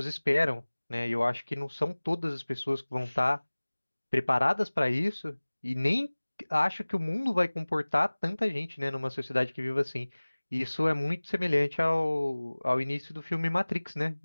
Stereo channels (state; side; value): inverted; both; correlation -1.00